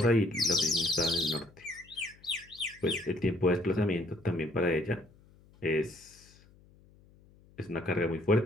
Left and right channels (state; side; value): noise; left; hum, 27 dB below the sound